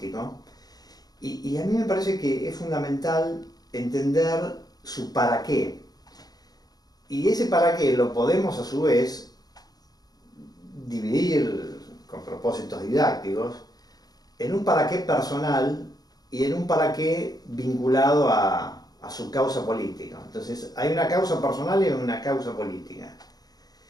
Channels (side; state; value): right; late; 0.19 ms